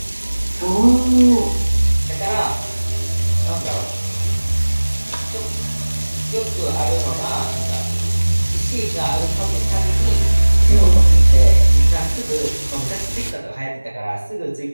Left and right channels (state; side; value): inverted; both; correlation -1.00